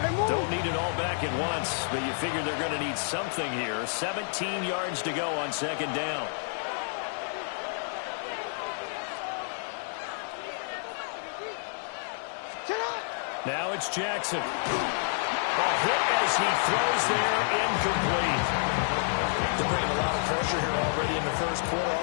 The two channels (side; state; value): right; silent; digital silence